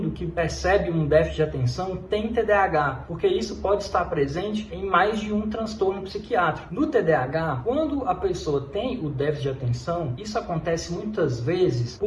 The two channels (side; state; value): both; identical; correlation 1.00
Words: que percebe um déficit de atenção tem TDAH, porque isso pode estar presente em mais de um transtorno psiquiátrico. No TDAH, quando a pessoa tem o déficit de atenção, isso acontece muitas vezes